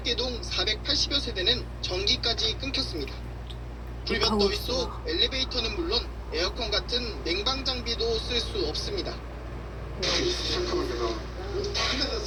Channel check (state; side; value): identical; both; correlation 1.00